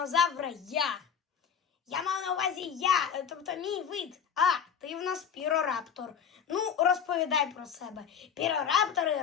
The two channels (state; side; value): quieter; right; 7.7 dB